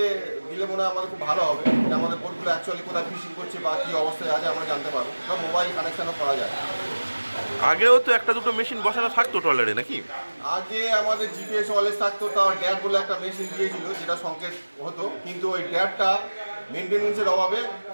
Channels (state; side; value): inverted; both; correlation -1.00